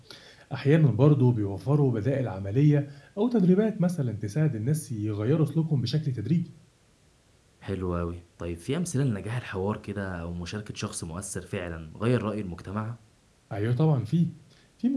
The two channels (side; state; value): both; identical; correlation 1.00